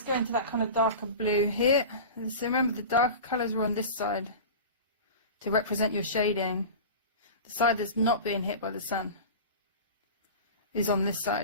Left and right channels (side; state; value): both; inverted; correlation -0.32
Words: go into that kind of darker blue here. So remember, the darker colours were on this side to represent your shading. The side that's not being hit by the sun is on this